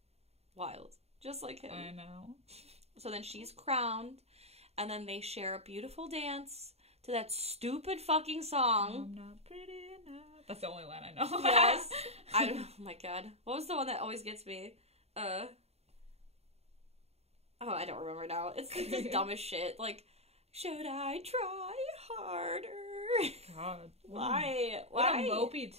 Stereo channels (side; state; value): left; late; 0.30 ms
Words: Wild. Just like him. I know. So then she's crowned. And then they share a beautiful dance to that stupid fucking song. I'm not pretty. That's the only line I know. Yes. Oh my god. What was the one that always gets me? Oh, I don't remember now. It's like this dumbest shit. Like, should I try harder? God. Why? What a mopey